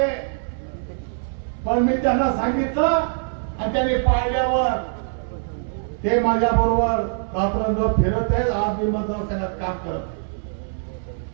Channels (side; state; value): left; silent; 62 dB below the other